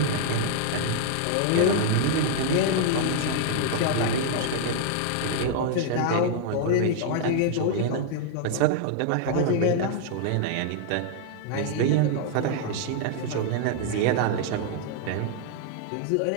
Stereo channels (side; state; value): both; different; correlation -0.01